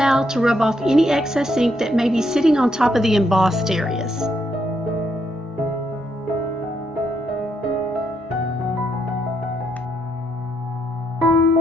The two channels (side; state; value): both; normal; correlation 0.77